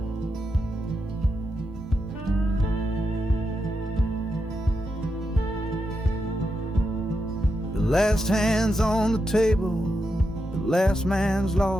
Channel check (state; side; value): normal; both; correlation 0.85